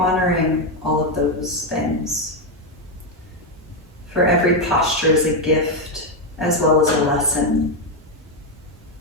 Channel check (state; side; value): normal; both; correlation 0.05